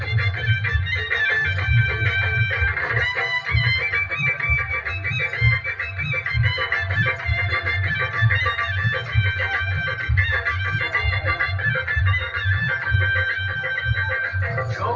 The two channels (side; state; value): both; identical; correlation 1.00